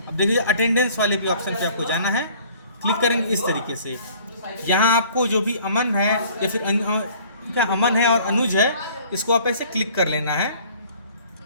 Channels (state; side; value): inverted; both; correlation -0.53